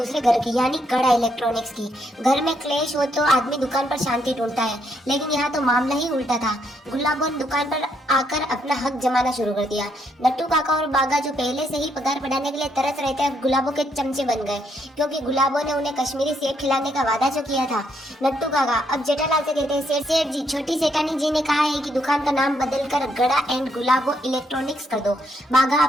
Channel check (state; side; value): normal; both; correlation 0.75